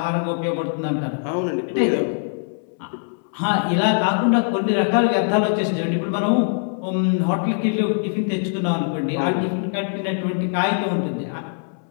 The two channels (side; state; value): right; silent; 64 dB below the other